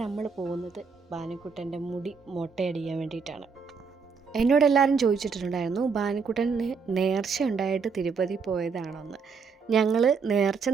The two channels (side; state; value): left; quieter; 5.4 dB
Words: നമ്മൾ പോകുന്നത് ഭാനുക്കുട്ടൻ്റെ മുടി മൊട്ടയടിക്കാൻ വേണ്ടിയിട്ടാണ്. എന്നോടെല്ലാവരും ചോദിച്ചിട്ടുണ്ടായിരുന്നു ഭാനുക്കുട്ടന് നേർച്ച ഉണ്ടായിട്ട് തിരുപ്പതി പോയതാണോന്ന്. ഞങ്ങൾ നേർച്ച